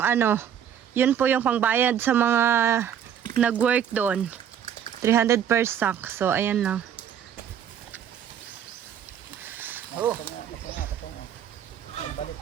yun po yung pangbayad sa mga nag-work doon. 300 per sack. So, ayan lang.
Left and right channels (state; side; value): quieter; left; 9.2 dB